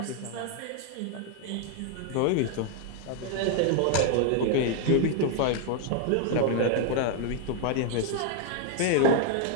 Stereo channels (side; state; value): both; different; correlation 0.00